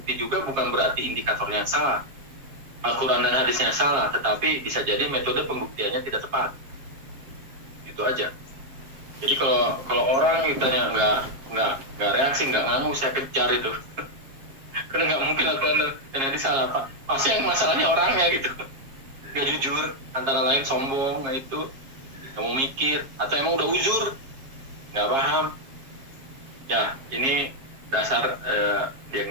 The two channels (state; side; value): late; left; 7.4 ms